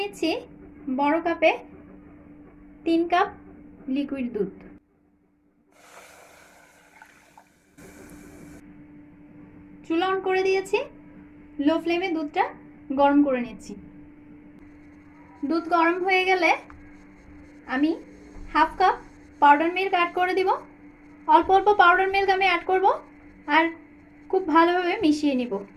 নিচ্ছি বড় কাপে 3 কাপ লিকুইড দুধ। চুলা অন করে দিয়েছি, লো ফ্লেমে দুধটা গরম করে নিচ্ছি। দুধ গরম হয়ে গেলে আমি half cup powder milk add করে দিব। অল্প অল্প পাউডার মিল্ক আমি অ্যাড করব আর খুব ভালোভাবে মিশিয়ে নিব।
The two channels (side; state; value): both; identical; correlation 1.00